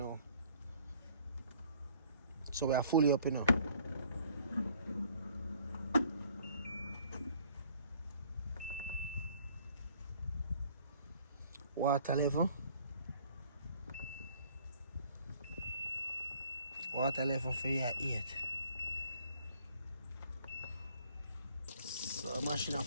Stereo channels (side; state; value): both; inverted; correlation -0.58